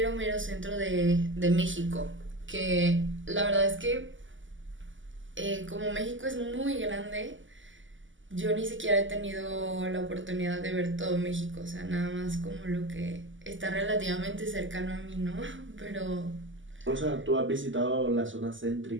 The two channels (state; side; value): late; left; 0.55 ms